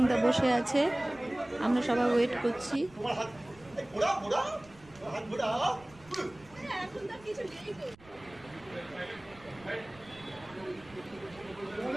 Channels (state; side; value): noise; right; rumble, 24 dB below the sound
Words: বসে আছে, আমরা সবাই ওয়েট করছি।